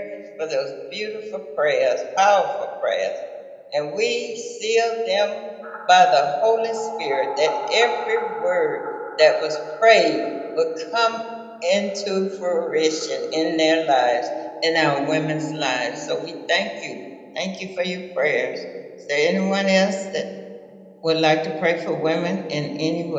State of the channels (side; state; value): both; identical; correlation 1.00